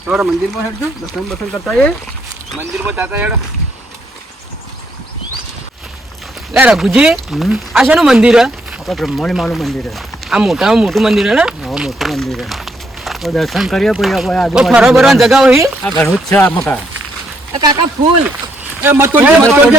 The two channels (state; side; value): normal; both; correlation 0.74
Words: થોડા મંદિરમાં હેડજો દર્શન બસન કરતા એ મંદિરમાં જાતા હેડો લે રઘુજી હમ? આ શેનું મંદિર હે આપણે બ્રહ્માણી માનું મંદિર છે. આ મોટામાં મોટું મંદિર હે ને હા મોટું મંદિર છે. તો દર્શન કરીએ પછી આપણે ઓ આજુબાજુ ફરવા બરવાની જગા હોય આ ઘણું જ છે આ મકા. કાકા ફૂલ એ મત તોડજે મત